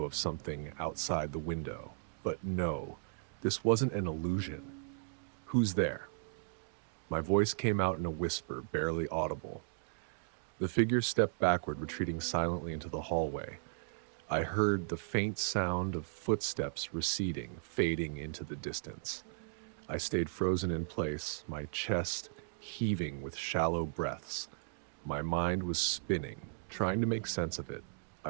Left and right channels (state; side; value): silent; left; digital silence